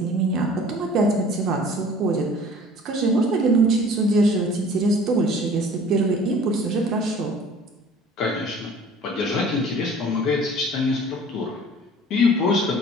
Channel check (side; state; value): both; normal; correlation 0.48